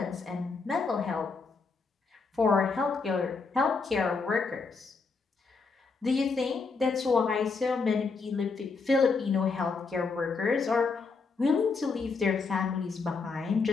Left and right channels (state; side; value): quieter; right; 4.6 dB